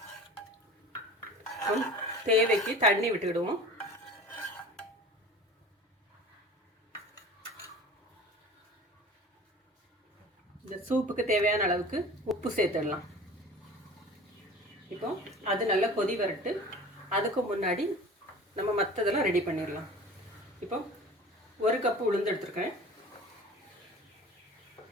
தேவைக்கு தண்ணி விட்டுக்கிடுவோம். இந்த சூப்புக்கு தேவையான அளவுக்கு உப்பு சேர்த்துடலாம். இப்போ அது நல்லா கொதி வரட்டு. அதுக்கு முன்னாடி நம்ம மற்றதெல்லாம் ரெடி பண்ணிடலாம். இப்போ ஒரு கப்பு உளுந்து எடுத்துருக்கேன்.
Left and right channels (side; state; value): both; normal; correlation 0.40